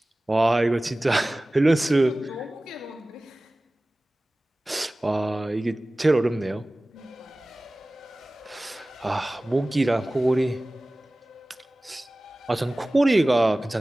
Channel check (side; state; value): both; normal; correlation 0.98